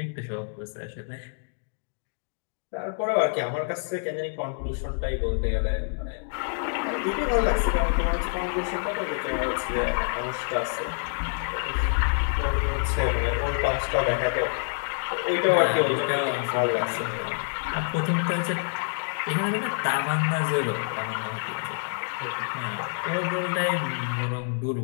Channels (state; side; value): silent; right; digital silence